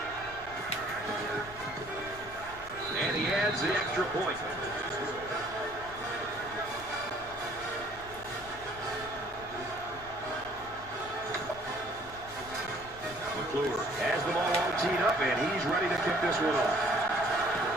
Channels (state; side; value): noise; left; rumble, 19 dB below the sound